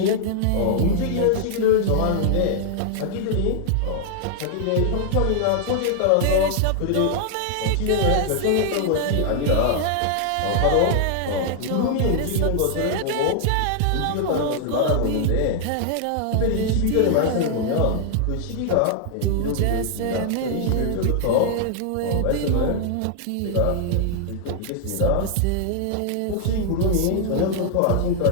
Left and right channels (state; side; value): different; both; correlation 0.00